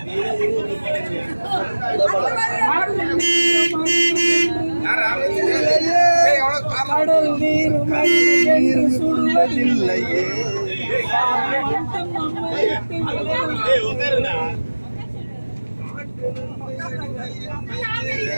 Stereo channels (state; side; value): inverted; both; correlation -1.00